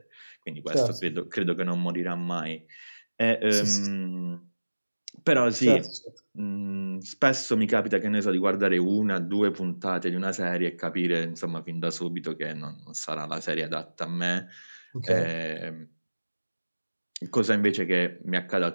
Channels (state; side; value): inverted; both; correlation -1.00